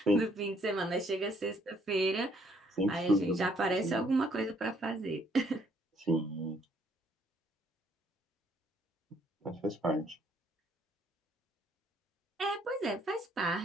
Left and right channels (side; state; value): both; normal; correlation 0.66